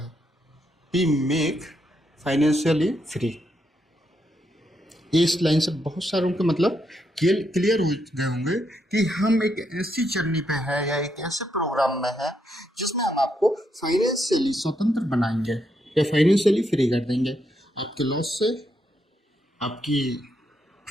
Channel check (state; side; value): normal; both; correlation 0.79